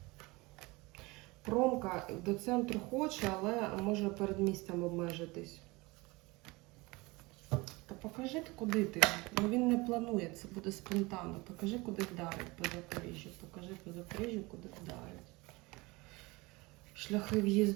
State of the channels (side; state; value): left; quieter; 23.6 dB